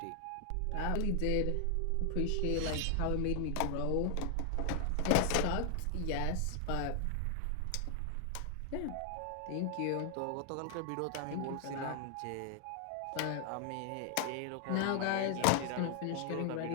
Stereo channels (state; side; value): different; both; correlation 0.00